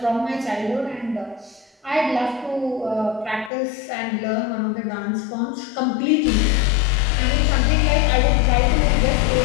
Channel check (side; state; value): right; drops out; at 3.5 s